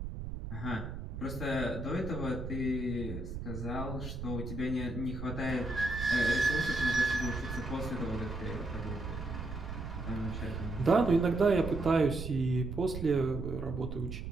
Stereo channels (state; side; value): noise; right; rumble, 7 dB below the sound